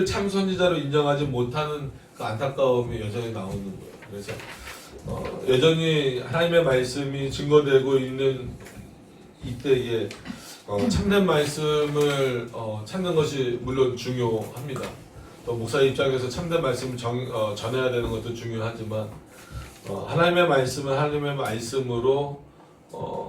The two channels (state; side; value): identical; both; correlation 1.00